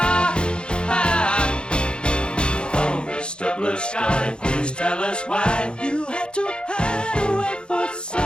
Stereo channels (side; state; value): right; late; 0.052 ms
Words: Oh, Mr. Blue Sky, please tell us why you had to hide away for so